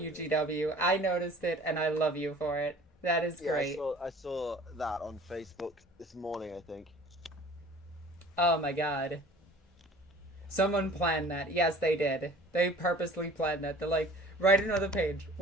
GW. I noticed it, and I love you for it. That is great. I saw that on Facebook this morning, I think. Oh my god. Someone planned that. Yes, they did. They purposely planned that. They're like, write another page.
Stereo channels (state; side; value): normal; both; correlation 0.48